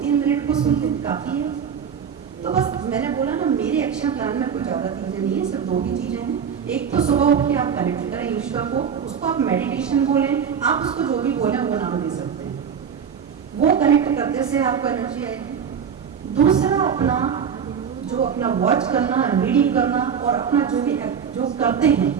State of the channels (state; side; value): quieter; left; 7.3 dB